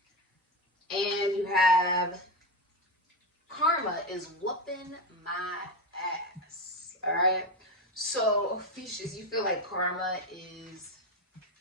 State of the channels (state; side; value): normal; both; correlation 0.14